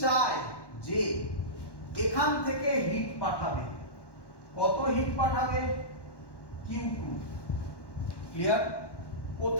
চায় যে এখান থেকে হিট পাঠাবে, কত হিট পাঠাবে? Q2, clear?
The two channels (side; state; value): right; late; 1.1 ms